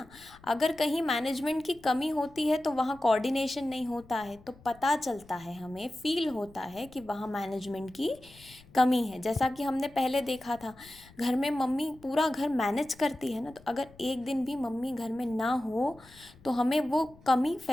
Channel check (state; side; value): noise; left; rumble, 24 dB below the sound